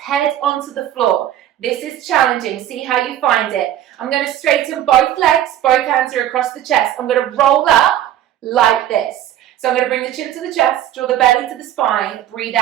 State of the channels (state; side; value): quieter; left; 11.8 dB